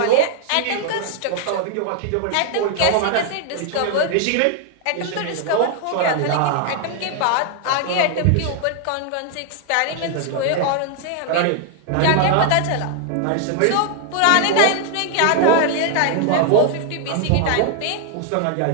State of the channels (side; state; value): both; different; correlation 0.00